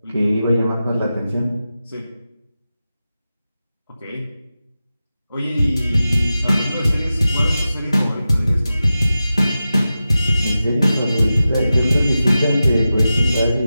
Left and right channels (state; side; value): inverted; both; correlation -0.93